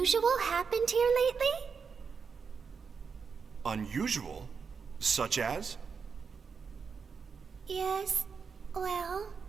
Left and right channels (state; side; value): quieter; left; 5.7 dB